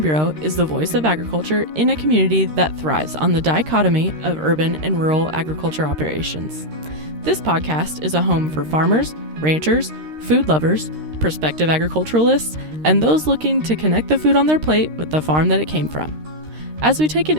Bureau is the voice of agriculture in a community that thrives on the dichotomy of urban and rural agriculture operations. This podcast is a home for farmers, ranchers, food lovers, prospective agriculturalists, and those looking to connect the food on their plate with the farm that it came from. As we take an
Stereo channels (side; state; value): left; late; 13 ms